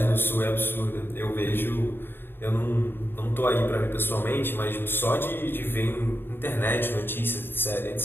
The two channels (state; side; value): late; right; 0.10 ms